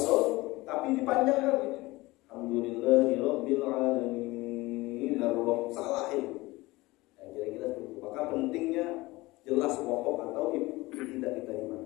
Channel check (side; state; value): right; quieter; 20.7 dB